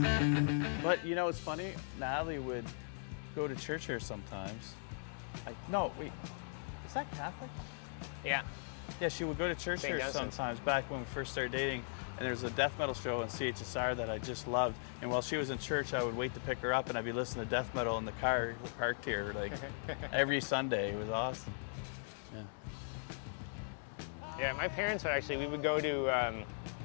you know, it's funny, Natalie would go to church here sometimes. No, wait, is that Catholic? Yeah. Yeah, she would go to church St. here Dunstan. sometimes back when we first started dating, and there was a death metal show on CHSR that I just loved. And while she was in church, I would wait to pick her up, and I'd be listening to death metal in the car parked here, like every Sunday. It was awesome. Yeah. Yeah, my parents would actually, we would go to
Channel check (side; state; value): right; silent; 52 dB below the other